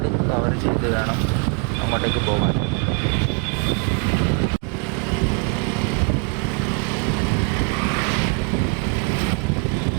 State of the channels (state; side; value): quieter; left; 33.5 dB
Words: കവർ ചെയ്ത് വേണം അങ്ങോട്ടേക്ക് പോകാൻ.